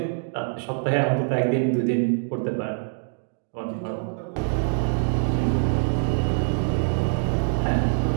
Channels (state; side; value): silent; left; 62 dB below the other